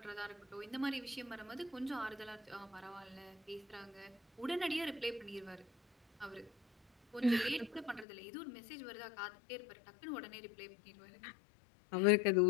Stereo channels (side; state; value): right; drops out; at 8.1 s